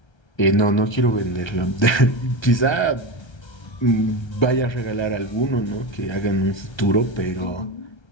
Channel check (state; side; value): late; right; 1.3 ms